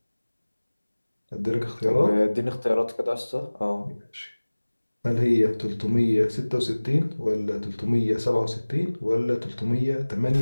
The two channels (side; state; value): both; inverted; correlation -1.00